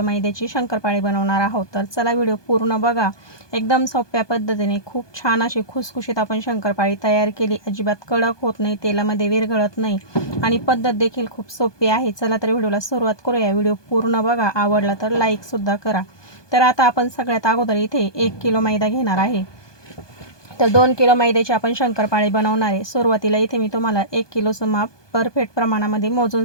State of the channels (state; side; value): late; right; 1.2 ms